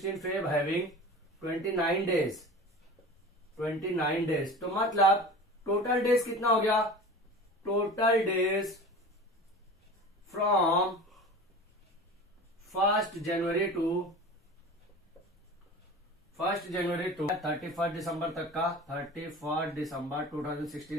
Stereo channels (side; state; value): both; normal; correlation 0.36